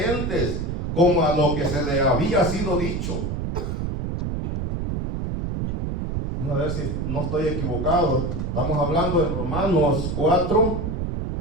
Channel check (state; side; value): noise; right; rumble, 2 dB below the sound